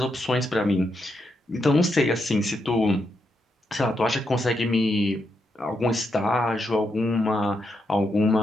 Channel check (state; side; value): normal; both; correlation 0.82